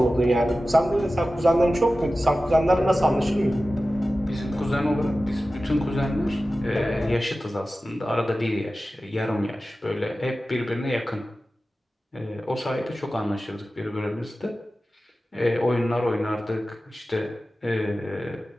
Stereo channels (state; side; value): normal; both; correlation 0.95